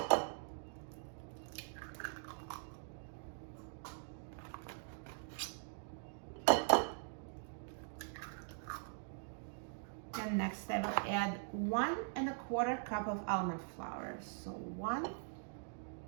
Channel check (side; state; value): left; silent; digital silence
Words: And next I will add 1 1/4 cup of almond flour. So 1